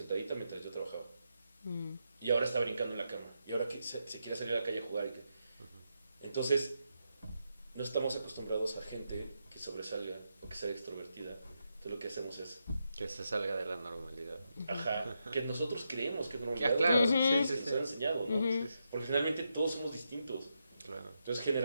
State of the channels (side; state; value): both; inverted; correlation -0.84